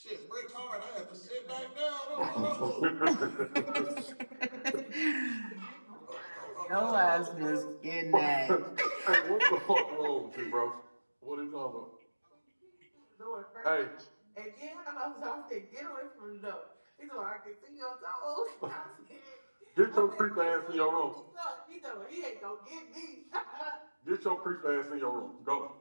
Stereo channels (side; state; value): both; inverted; correlation -1.00